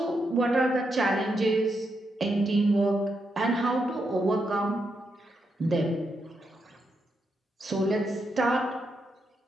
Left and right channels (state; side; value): normal; both; correlation 0.82